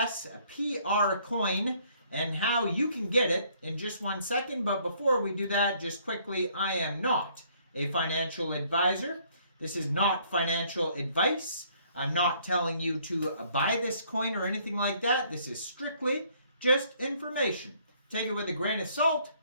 coin and how you can get it in just 1 second. But before we do that, just quickly, I am not a financial advisor. This is not financial advice. I'm not telling you to buy this coin or anything like that. This is strictly just information. Take it with a grain of salt.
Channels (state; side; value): inverted; both; correlation -0.63